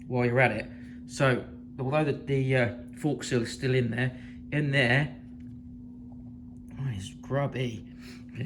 while you're at it. So, although the fork seal is still in there, oh, it's grubby.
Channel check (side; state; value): both; identical; correlation 1.00